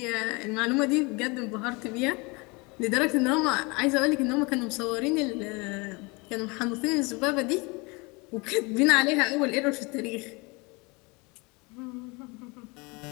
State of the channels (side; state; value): right; quieter; 27.3 dB